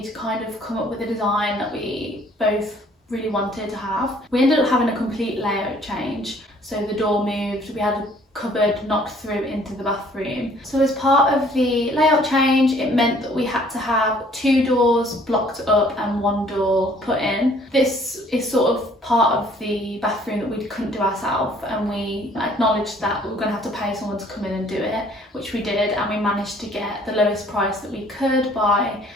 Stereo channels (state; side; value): normal; both; correlation 0.58